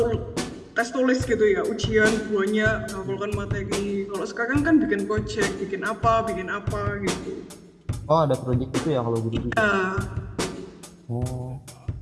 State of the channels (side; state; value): both; identical; correlation 1.00